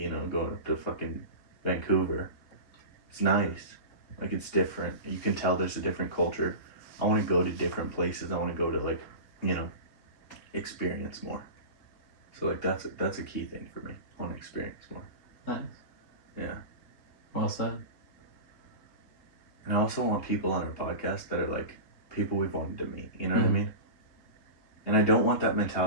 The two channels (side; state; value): right; late; 3.6 ms